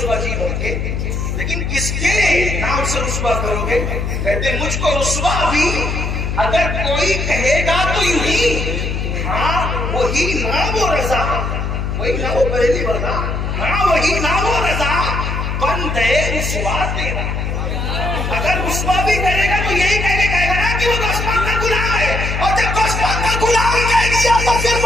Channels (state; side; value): noise; left; hum, 2 dB below the sound